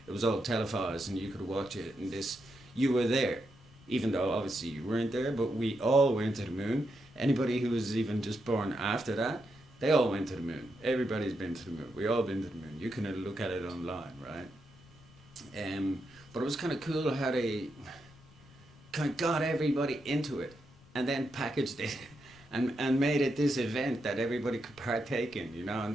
it was all televised and you could watch it, and you were there, even though obviously you weren't there, but we all went to the moon. Anybody who was even just born after that, they all went to the moon. Everybody's been to the moon. We all been to the moon. You can look at it online, right? But it was kind of cool how they kind of got everybody into it and then packaged it and made it this event that everybody could partake in,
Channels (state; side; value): noise; left; rumble, 24 dB below the sound